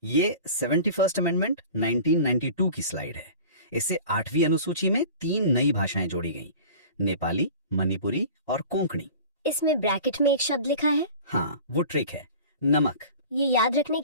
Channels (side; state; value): both; inverted; correlation -0.40